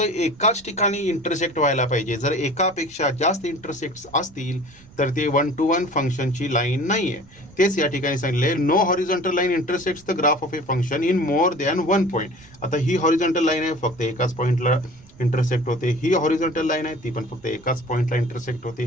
ठिकाणी इंटरसेक्ट व्हायला पाहिजे. जर एकापेक्षा जास्त इंटरसेक्ट्स असतील तर ते 1 to 1 फंक्शनची लाईन नाही आहे. तेच या ठिकाणी सांगितले, no horizontal line intersects the graph of a function in more than 1 point. आता ही हॉरिझॉन्टल लाईन आहे, फक्त एकाच पॉईंटला इंटरसेक्ट होते. ही हॉरिझॉन्टल लाईन आहे, ती पण फक्त एकाच पॉईंटला इंटरसेक्ट होते.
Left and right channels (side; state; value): right; noise; rumble, 25 dB below the sound